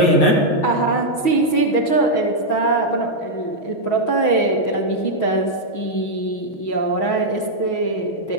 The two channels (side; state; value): right; late; 6.2 ms